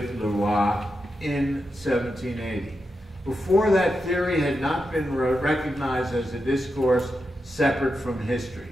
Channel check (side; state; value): both; normal; correlation 0.87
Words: Leroy in 1780. Before that, theory had not been recognized as a discourse separate from history.